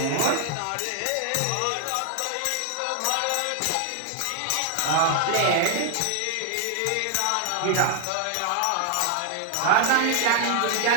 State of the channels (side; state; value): both; different; correlation 0.00